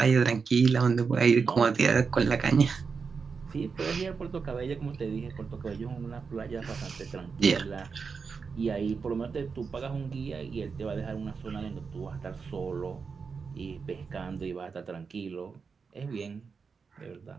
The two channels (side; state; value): left; quieter; 5.3 dB